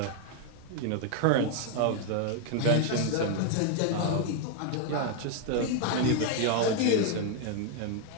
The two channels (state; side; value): different; both; correlation 0.00